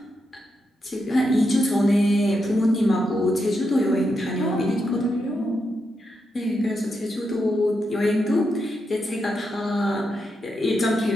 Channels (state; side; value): normal; both; correlation 0.84